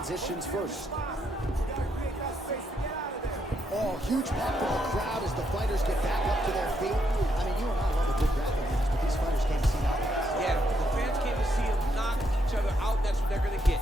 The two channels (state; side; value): normal; both; correlation 0.77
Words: first. Oh, huge pop from the crowd as the fighters get back up to their feet. I mean, you and I love a good grappling match, but these fighters came to see nothing. Yeah, the fans came to see them knock each other out. That's what they're going to